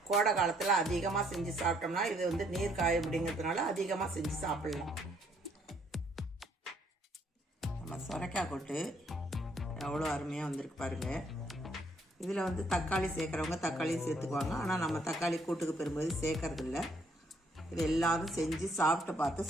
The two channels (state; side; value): normal; both; correlation 0.67